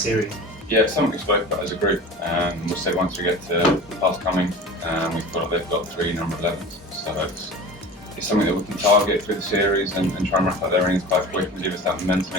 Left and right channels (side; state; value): both; normal; correlation 0.36